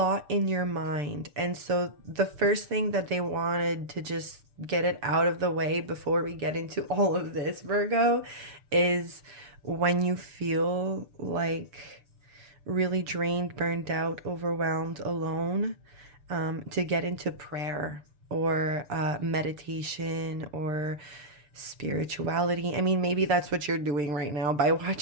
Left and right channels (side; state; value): left; late; 6.8 ms